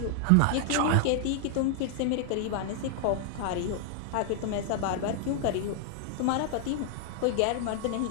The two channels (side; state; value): both; different; correlation 0.00